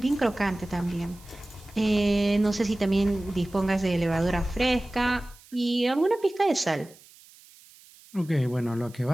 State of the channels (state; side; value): noise; right; hiss, 25 dB below the sound